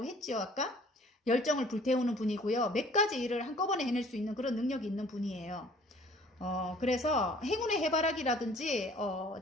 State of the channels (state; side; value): normal; both; correlation 0.54